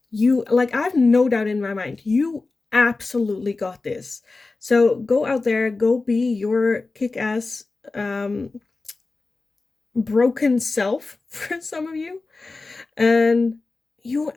I have no doubt in my mind, you absolutely got this. So go out there, go be your kick-ass broken self for some of you, and you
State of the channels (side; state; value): right; quieter; 3.6 dB